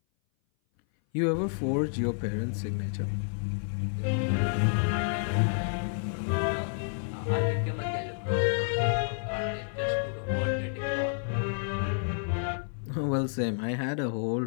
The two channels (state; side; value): silent; right; 57 dB below the other